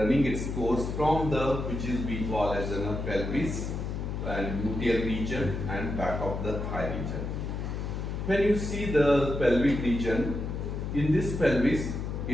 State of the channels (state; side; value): noise; left; hum, 4 dB below the sound